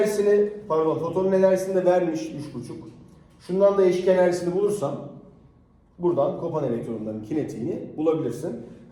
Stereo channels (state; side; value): identical; both; correlation 1.00